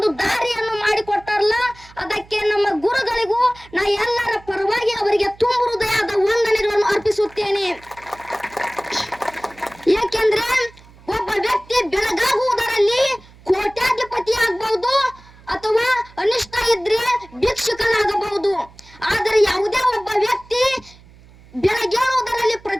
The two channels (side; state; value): right; noise; hum, 24 dB below the sound